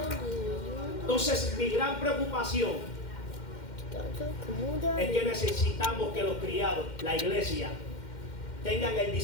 Entonces, mi gran preocupación es que necesitamos que los criados, la iglesia, tengan el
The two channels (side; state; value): right; late; 2.1 ms